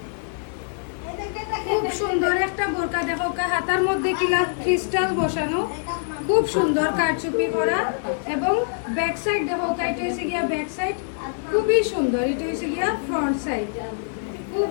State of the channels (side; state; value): right; silent; 62 dB below the other